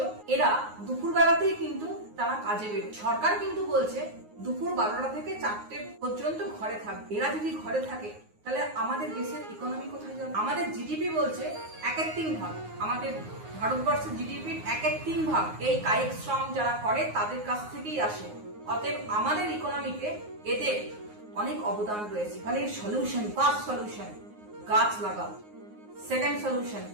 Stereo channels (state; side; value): late; left; 9.6 ms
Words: এরা দুপুর বেলাতেই কিন্তু তারা কাজে বেরোয়। সরকার কিন্তু বলছে দুপুর 12টা থেকে 4টে পর্যন্ত ঘরে থাকবে। এরা যদি ঘরে থাকে তাহলে আমাদের দেশের ইকোনমি কোথায় যাবে? আমাদের জিডিপি বলছে 1/3 ভাগ, আমাদের ভারতবর্ষের জিডিপির 1/3 ভাগ এই কায়িক শ্রম যারা করে তাদের কাছ থেকেই আসে। অতএব আমাদের ইকোনমিতে এদের অনেক অবদান রয়েছে। তাহলে সলিউশন, ফার্স্ট সলিউশন গাছ লাগাও, সেকেন্ড সলিউশন